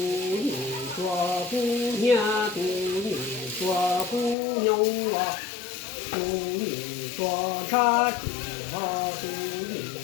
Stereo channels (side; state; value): right; drops out; at 4.4 s